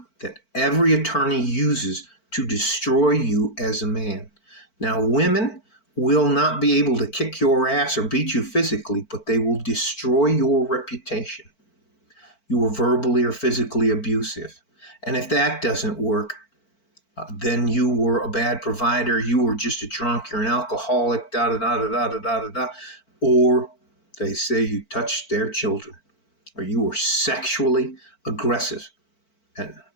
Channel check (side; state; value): right; late; 4.5 ms